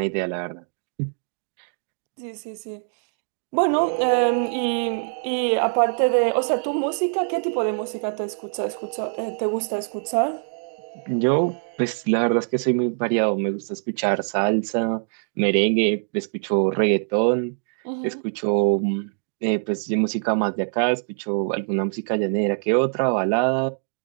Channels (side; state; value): left; silent; digital silence